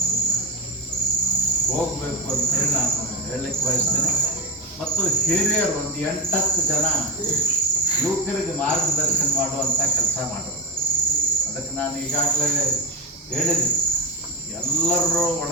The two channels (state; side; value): normal; both; correlation 0.13